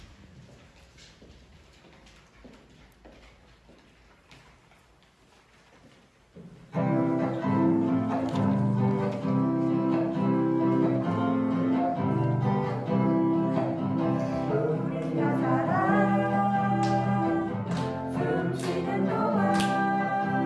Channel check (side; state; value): both; identical; correlation 1.00